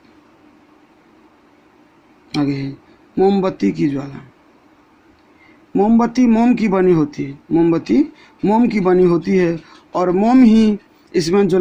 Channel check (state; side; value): identical; both; correlation 1.00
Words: आगे है मोमबत्ती की ज्वाला, मोमबत्ती मोम की बनी होती है, मोमबत्ती मोम की बनी होती है और मोम ही इसमें